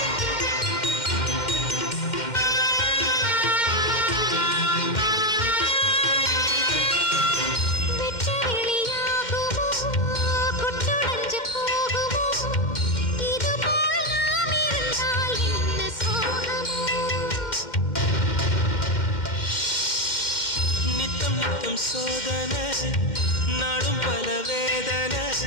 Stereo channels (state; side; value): late; right; 2.1 ms